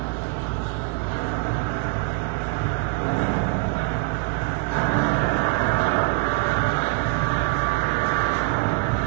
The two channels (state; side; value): quieter; left; 26.1 dB